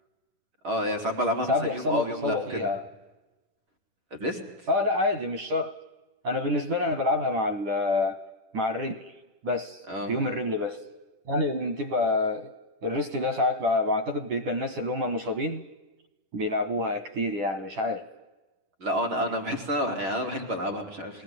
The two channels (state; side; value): late; left; 10 ms